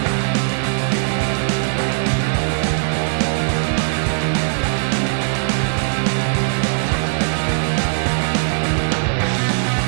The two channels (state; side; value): silent; left; digital silence